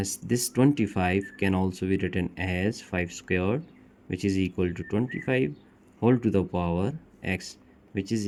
this 25 can also be written as 5 squared, which is equal to 25 whole to the power x, which is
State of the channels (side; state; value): both; identical; correlation 1.00